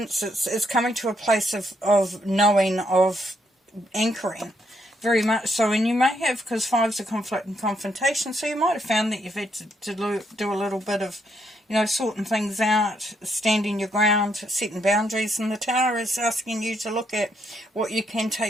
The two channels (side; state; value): both; normal; correlation 0.75